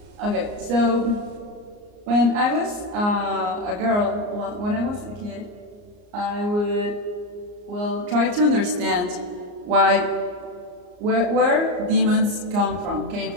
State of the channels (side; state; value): left; late; 34 ms